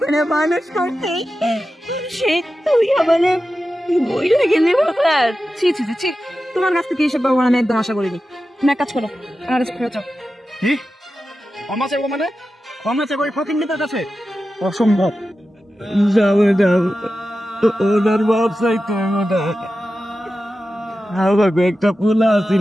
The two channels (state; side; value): normal; both; correlation 0.93